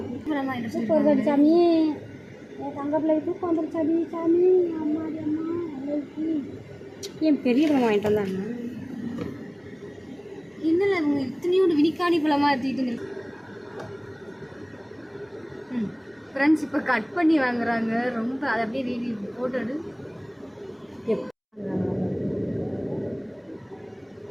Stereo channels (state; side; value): identical; both; correlation 1.00